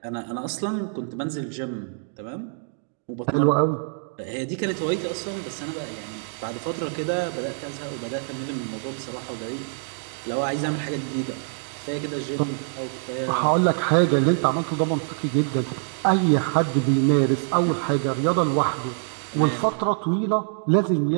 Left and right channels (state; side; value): silent; left; digital silence